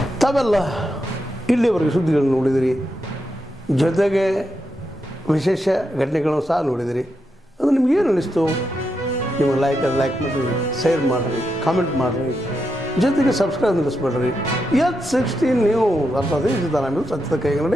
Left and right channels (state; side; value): normal; both; correlation 0.85